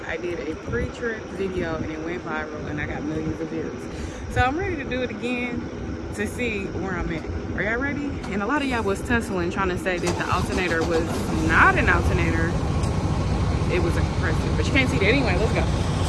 I did a pre-trip video and it went viral and I got millions of views. So I'm ready to do it again to see where I'm at. Are y'all ready? And a lot of y'all was tussling trying to say that the alternator was not an alternator. It was a compressor, but you can't see that anyway. Let's go.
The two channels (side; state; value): both; identical; correlation 1.00